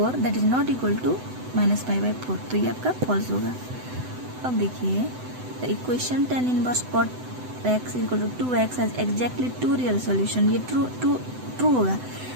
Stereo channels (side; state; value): left; late; 7.9 ms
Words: that is not equal to -π/4, तो ये आपका फॉल्स होगा। अब देखिए the equation tan inverse cot x equal to 2x has exactly 2 real solution, ये ट्रू होगा।